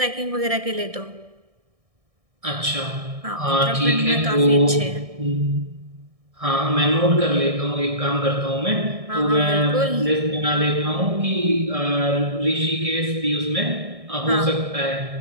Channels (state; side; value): late; left; 1.6 ms